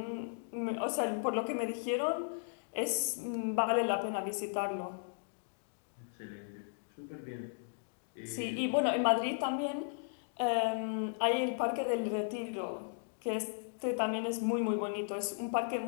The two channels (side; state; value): right; silent; digital silence